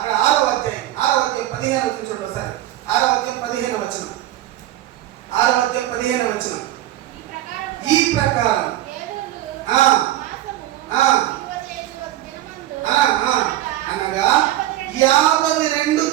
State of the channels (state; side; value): quieter; left; 14.2 dB